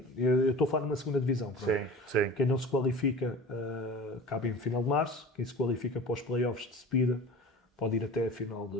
Eu estou a falar numa segunda divisão. Sim. Quem não se qualifica acaba em final de março. Quem se qualifica para os playoffs de subida pode ir até a final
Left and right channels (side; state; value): both; normal; correlation 0.38